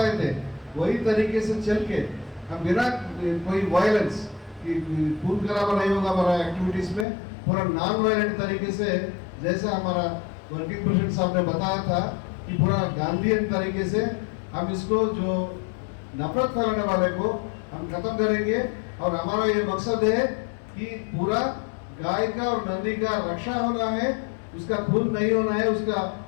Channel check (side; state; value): right; drops out; at 7.1 s